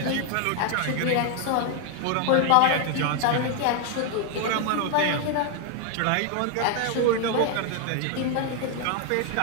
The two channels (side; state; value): both; different; correlation 0.00